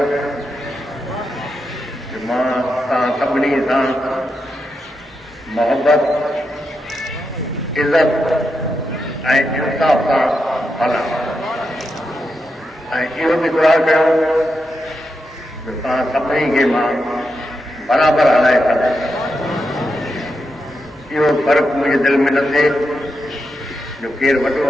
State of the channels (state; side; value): normal; both; correlation 0.86